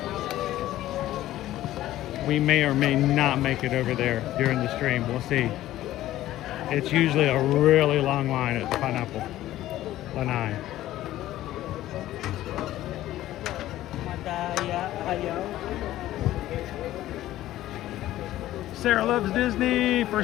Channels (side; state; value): right; quieter; 14.5 dB